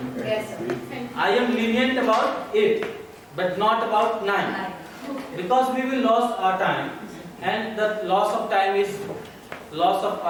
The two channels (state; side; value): identical; both; correlation 1.00